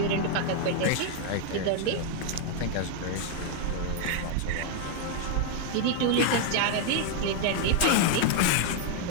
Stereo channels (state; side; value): different; both; correlation 0.00